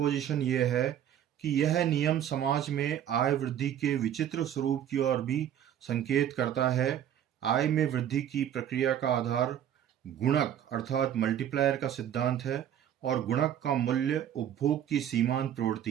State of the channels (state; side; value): quieter; left; 10.2 dB